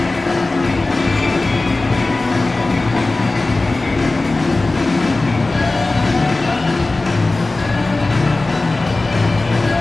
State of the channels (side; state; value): right; quieter; 3.2 dB